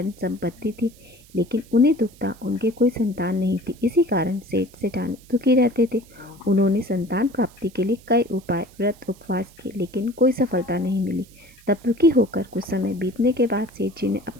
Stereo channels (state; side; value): noise; right; hiss, 26 dB below the sound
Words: संपत्ति थी, लेकिन उन्हें दुख था, उनके कोई संतान नहीं थी। इसी कारण सेठ सेठानी दुखी रहते थे। उन्होंने संतान प्राप्ति के लिए कई उपाय, व्रत, उपवास किए, लेकिन कोई सफलता नहीं मिली। तब दुखी होकर कुछ समय बीतने के बाद सेठ जी ने